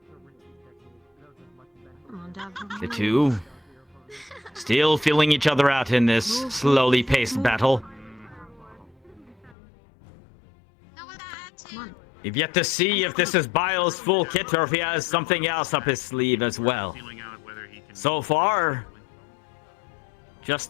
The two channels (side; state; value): right; drops out; at 9.6 s